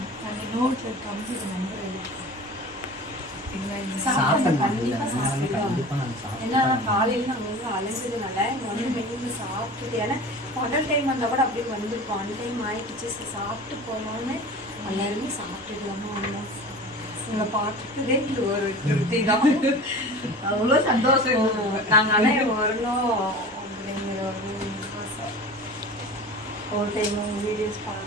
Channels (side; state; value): both; normal; correlation 0.37